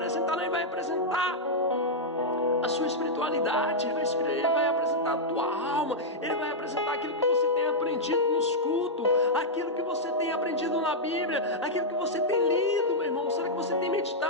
não, ele vai apresentar a sua espiritualidade, ele vai apresentar a tua alma, ele vai apresentar aquilo que você tem aprendido nos cultos, aquilo que você tem aprendido na Bíblia, aquilo que você tem lido, meu irmão. Será que você tem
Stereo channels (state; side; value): normal; both; correlation -0.06